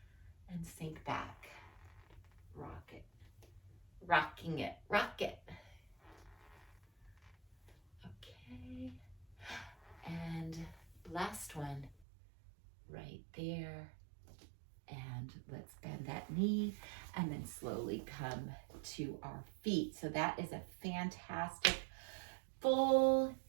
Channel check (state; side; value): drops out; left; at 12.1 s